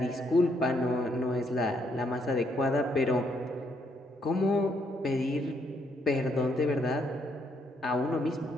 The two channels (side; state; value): both; normal; correlation 0.73